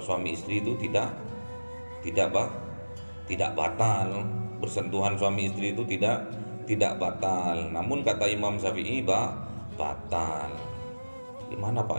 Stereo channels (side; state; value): both; inverted; correlation -1.00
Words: suami istri itu tidak batal, bersentuhan suami istri itu tidak batal. Namun kata Imam Syafi'i batal. Gimana Pak?